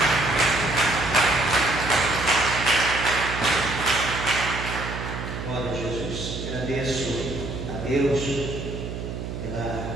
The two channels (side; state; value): right; noise; hum, 6 dB below the sound